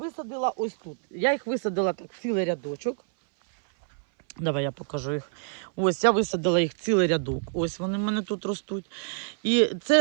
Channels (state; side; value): silent; left; 60 dB below the other